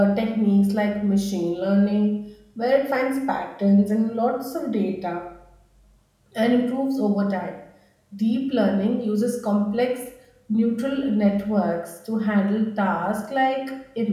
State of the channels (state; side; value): identical; both; correlation 1.00